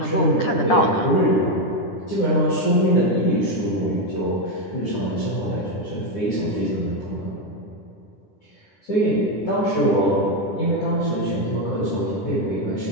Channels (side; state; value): right; late; 10 ms